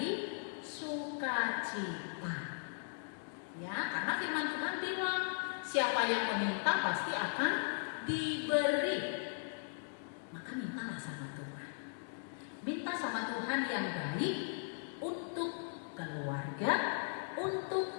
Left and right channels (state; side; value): silent; right; digital silence